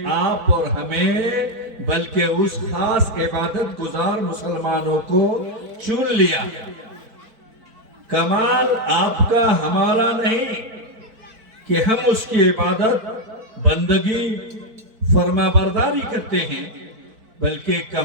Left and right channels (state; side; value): late; left; 4.5 ms